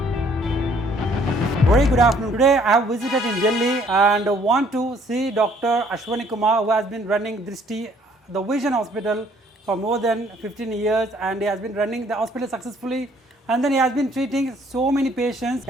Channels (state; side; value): normal; both; correlation 0.62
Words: Very good afternoon. Today I have visited in Delhi and want to see Dr. Ashwani Kumar, who has been running Drishti, the Vision Hospital for more than 15 years, and he has been running the hospital successfully, and then he has been treating so many patients.